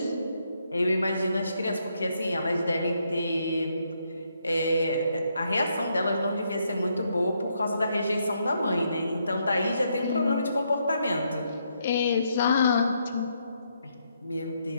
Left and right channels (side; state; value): both; inverted; correlation -0.76